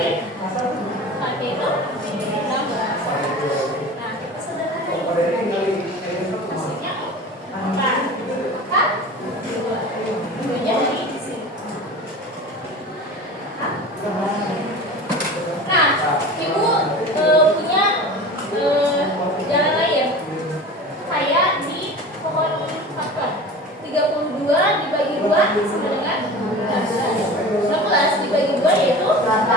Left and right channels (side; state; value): both; normal; correlation 0.35